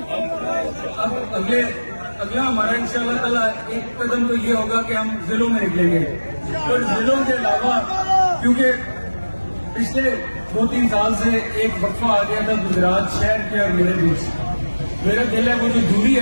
اگلا ہمارا انشاءاللہ تعالیٰ ایک قدم تو یہ ہوگا کہ ہم ضلعوں میں نکلیں گے. اور ضلعوں کے علاوہ کیونکہ پچھلے 2-3 سال سے ایک وقفہ آ گیا تھا گجرات شہر کے اور میرے بیچ, میرا دل ہے وہ جو دوری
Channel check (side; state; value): both; inverted; correlation -1.00